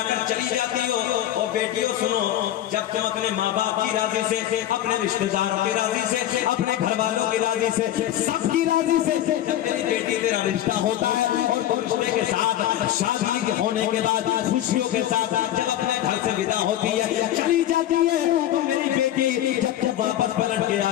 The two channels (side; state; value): right; quieter; 12.5 dB